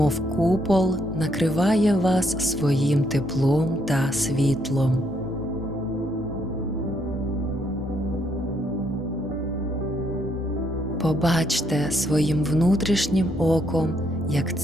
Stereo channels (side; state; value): both; normal; correlation 0.73